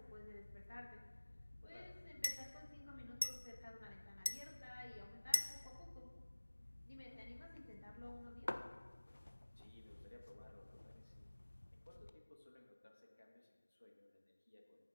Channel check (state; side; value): inverted; both; correlation -1.00